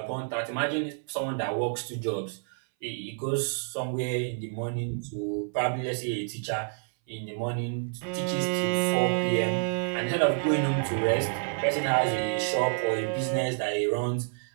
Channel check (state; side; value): silent; left; 59 dB below the other